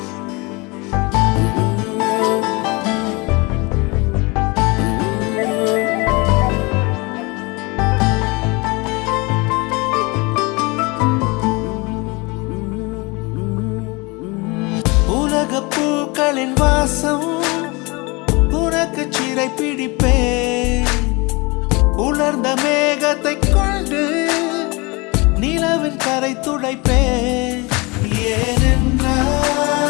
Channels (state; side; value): quieter; right; 26.4 dB